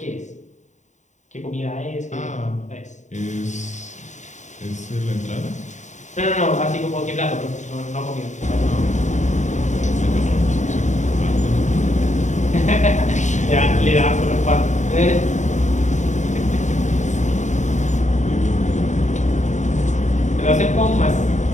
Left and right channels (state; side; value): late; right; 0.35 ms